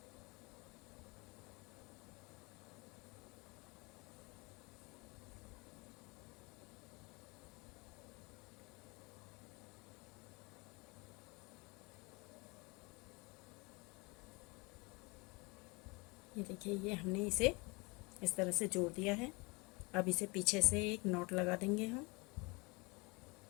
ये देखिए ये हमने इसे इस तरह से जोड़ दिया है। अब इसे पीछे से एक नॉट लगा देंगे हम।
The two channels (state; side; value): quieter; right; 27.2 dB